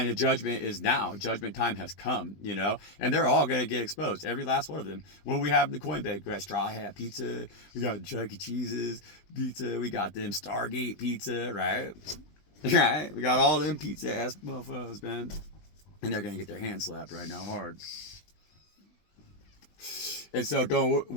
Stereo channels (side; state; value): right; late; 20 ms